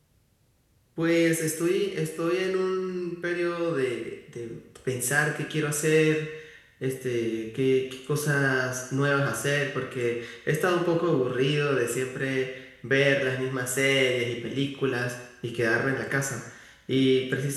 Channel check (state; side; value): identical; both; correlation 1.00